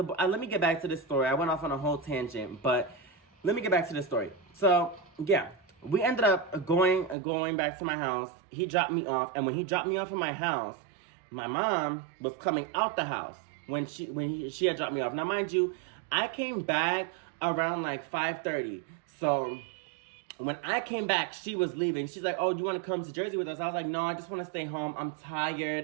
let me get back to this story. I went off on a whole tangent, but let me get back to this story. So yeah. We ended up going back to my house. He dropped me off, and when he dropped me off at my house, my mom was coming out the house when she had dropped me off. Now, mind you, I came back around like 5:30. So when I came back, she was leaving. She's like, "Oh, do you want to come to Jersey with us?" I was like, "No, I just want to stay home. I'm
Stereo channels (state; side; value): drops out; left; at 7.2 s